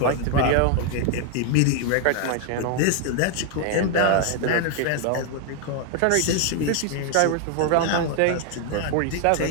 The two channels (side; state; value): both; different; correlation 0.00